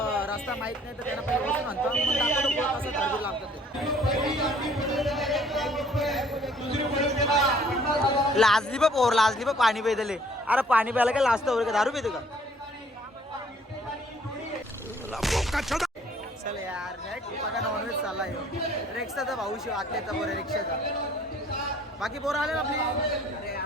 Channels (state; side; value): normal; both; correlation 0.58